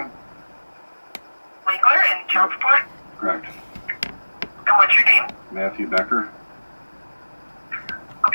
Wangler and child support? Correct. And what's your name? Matthew Becker.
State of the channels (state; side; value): inverted; both; correlation -1.00